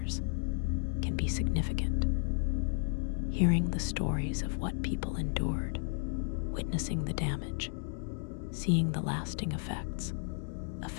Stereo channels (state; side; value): silent; right; 56 dB below the other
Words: can be significant. Hearing the stories of what people endured, witnessing the damage, seeing the lasting effects,